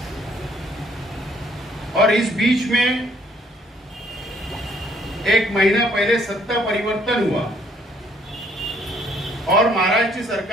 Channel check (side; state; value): both; normal; correlation 0.64